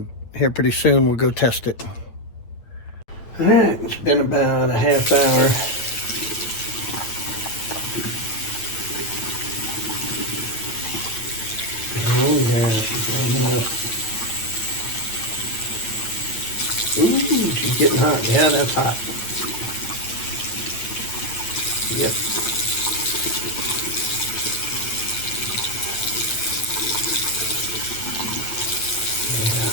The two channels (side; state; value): right; late; 8.7 ms